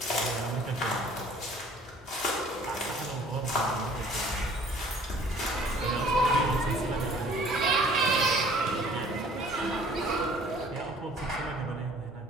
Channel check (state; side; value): normal; both; correlation 0.53